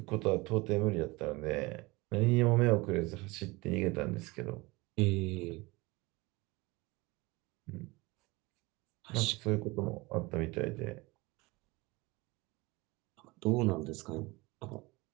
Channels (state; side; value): quieter; left; 23.4 dB